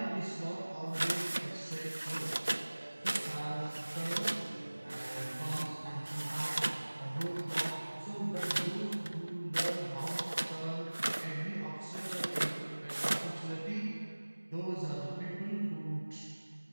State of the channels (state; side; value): inverted; both; correlation -1.00